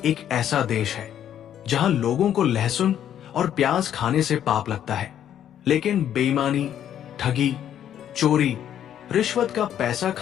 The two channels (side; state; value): right; quieter; 10.2 dB